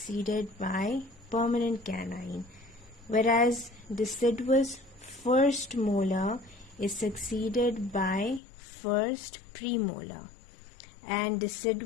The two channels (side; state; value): right; drops out; at 8.4 s